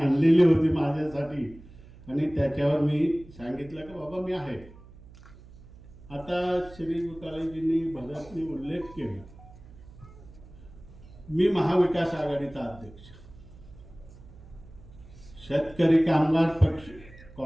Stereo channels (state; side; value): noise; right; hum, 20 dB below the sound